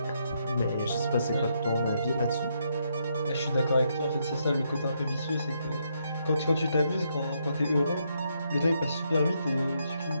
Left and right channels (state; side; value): inverted; both; correlation -0.77